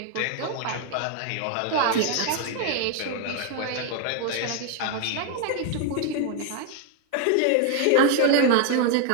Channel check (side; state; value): both; different; correlation 0.01